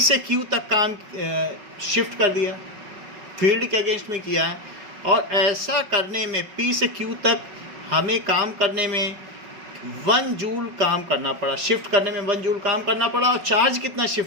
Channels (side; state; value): left; late; 5.3 ms